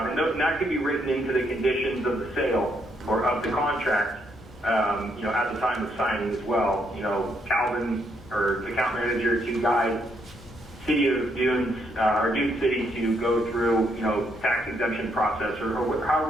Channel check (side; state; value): both; normal; correlation 0.74